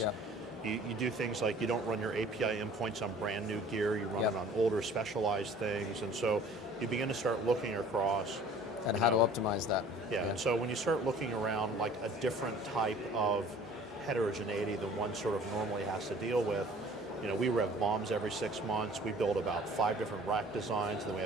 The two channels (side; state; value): both; normal; correlation 0.49